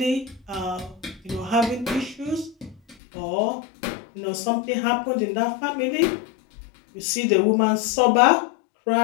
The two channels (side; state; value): right; drops out; at 3.0 s